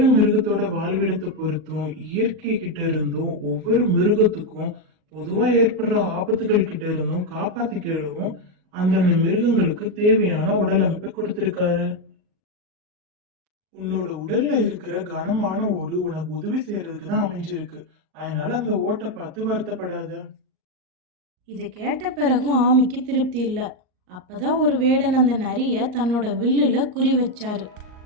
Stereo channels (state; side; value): late; left; 38 ms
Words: மிருகத்தோட வாழ்விடத்தை பொறுத்தும் இயற்கை கிட்ட இருந்தும் ஒவ்வொரு மிருகத்துக்கும் பொதுவா ஏற்படுற ஆபத்துகள் கிட்ட இருந்தும் காப்பாத்திக்கிடவும் அந்தந்த மிருகங்களுக்கு தேவையான உடல் அமைப்பை கொடுத்திருக்காரு. உன்னோட உடல்ல இருக்கிற கனமான ஓடு உனக்கு உதவி செய்யறதுக்கு தான் அமைஞ்சிருக்கு. அதனால அந்த ஓட்டை பார்த்து வருத்தப்படாத. இதை கேட்ட பிறகும் ஆமைக்கு திருப்தி இல்லை. அப்பதான் ஒரு வேடன் அந்த நரிய தன்னோட வில்லுல குறி வச்சாரு.